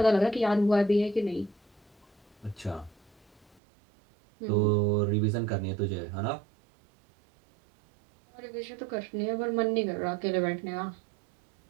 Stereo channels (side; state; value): left; drops out; at 3.6 s